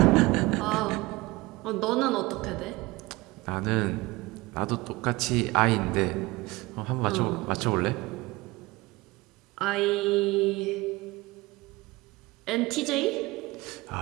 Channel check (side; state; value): left; quieter; 21.4 dB